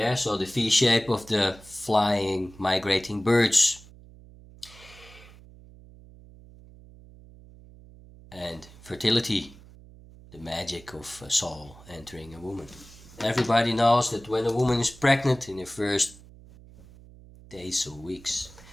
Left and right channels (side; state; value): right; noise; hum, 21 dB below the sound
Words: so the V shape of the flying, migrating birds. And fertility, the magic of a soul entering a woman. Everybody knows that when a woman is pregnant in the first days or weeks,